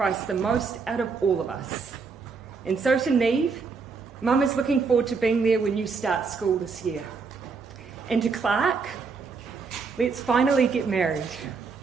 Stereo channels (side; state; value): left; quieter; 5.0 dB